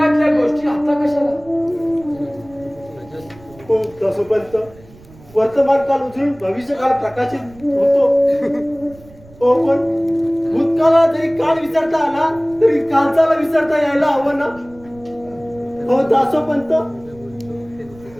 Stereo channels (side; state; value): right; noise; rumble, 24 dB below the sound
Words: गोष्टी आता कशाला? हो दसोपंत, वर्तमान काल उचलून भविष्य काळ प्रकाशित होतो. हो पण भूतकाळाला जरी काल विसरता आला तरी कालचाला विसरता यायला हवं ना. हो दासोपंत,